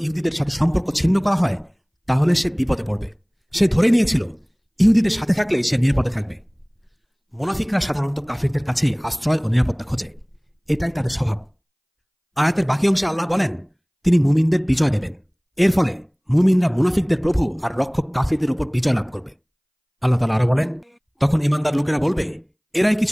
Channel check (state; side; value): identical; both; correlation 1.00